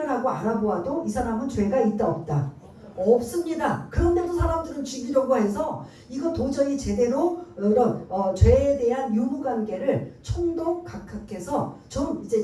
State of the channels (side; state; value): both; identical; correlation 1.00